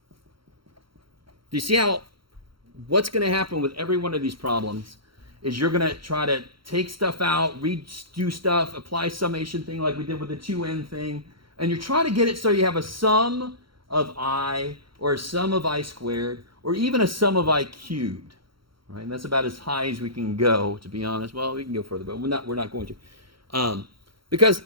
Do you see how what's going to happen with every one of these problems is you're going to try to take stuff out, redo stuff, apply summation thing like we did with the 2n thing, and you're trying to get it so you have a sum of I or a sum of I squared, or even a sum of I cubed. Right? And that's about as high as we can go, to be honest. Well, we can go further, but we're not going to. Because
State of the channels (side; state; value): left; late; 0.74 ms